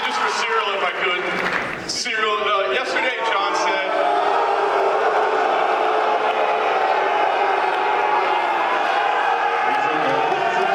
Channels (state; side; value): identical; both; correlation 1.00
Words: just for Ciryl, if I could. Ciryl, yesterday Jon said,